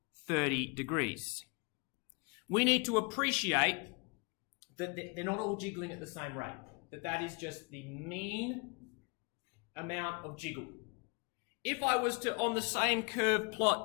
30 degrees. We need to appreciate that they're not all jiggling at the same rate, that is just the mean amount of jiggle. If I was to, on the same curve,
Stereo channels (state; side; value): quieter; right; 31.5 dB